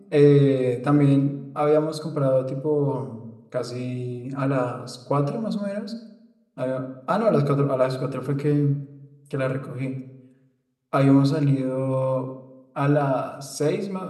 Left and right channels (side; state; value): both; identical; correlation 1.00